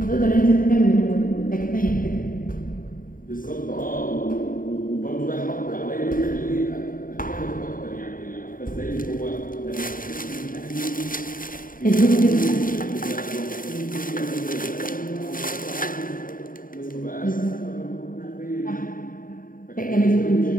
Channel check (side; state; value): right; late; 0.40 ms